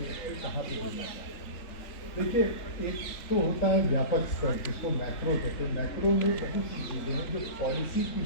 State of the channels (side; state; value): right; late; 3.4 ms